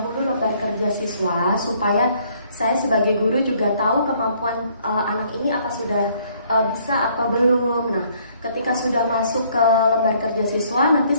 lembar kerja siswa supaya saya sebagai guru juga tahu kemampuan anak ini apa sudah bisa atau belum. Nah, ketika sudah masuk ke lembar kerja siswa, nanti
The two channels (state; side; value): inverted; both; correlation -0.63